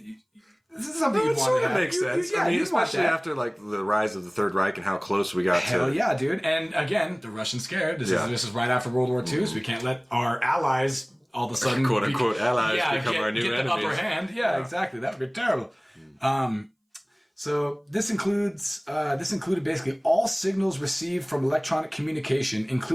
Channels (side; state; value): both; identical; correlation 1.00